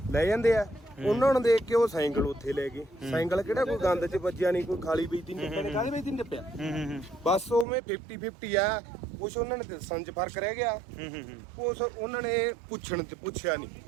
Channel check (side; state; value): left; drops out; at 7.7 s